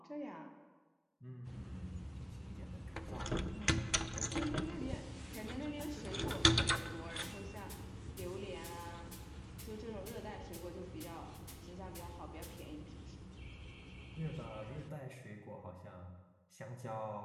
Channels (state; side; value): identical; both; correlation 1.00